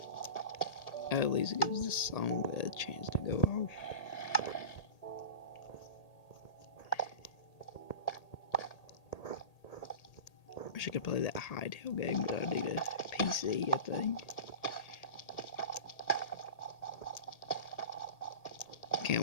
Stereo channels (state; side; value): late; right; 1.8 ms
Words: At least it gives this song a chance to go off. I wish I could play that Hightail game, but I need a PC, I think. Can't